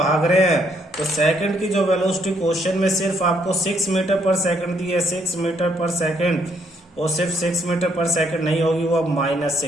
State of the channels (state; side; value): normal; both; correlation 0.71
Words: रहे हैं। तो सेकंड की जो वेलोसिटी क्वेश्चन में सिर्फ आपको 6 मीटर पर सेकंड दी है, 6 मीटर पर सेकंड, और सिर्फ 6 मीटर पर सेकंड नहीं होगी, वो अब